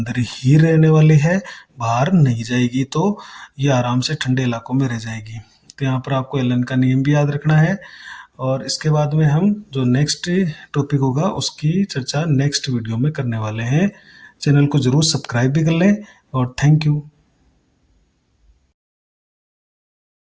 ही रहने वाली है, बाहर नहीं जाएगी। तो ये आराम से ठंडे इलाकों में रह जाएगी। तो यहाँ पर आपको एलन का नियम भी याद रखना है। और इसके बाद में हम जो नेक्स्ट टॉपिक होगा उसकी चर्चा नेक्स्ट वीडियो में करने वाले हैं। चैनल को ज़रूर सब्सक्राइब भी कर लें, और थैंक यू।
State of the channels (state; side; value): identical; both; correlation 1.00